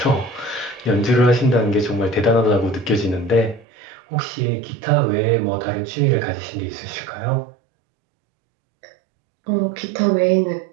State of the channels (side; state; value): left; drops out; at 3.7 s